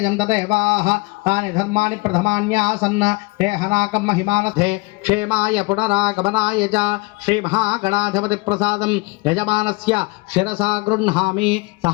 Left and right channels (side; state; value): right; quieter; 25.6 dB